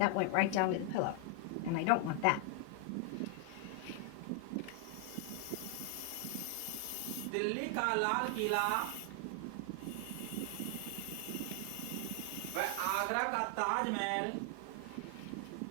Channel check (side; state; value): both; different; correlation 0.00